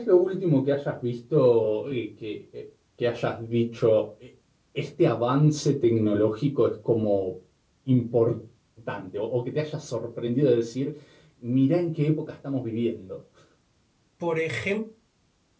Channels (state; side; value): identical; both; correlation 1.00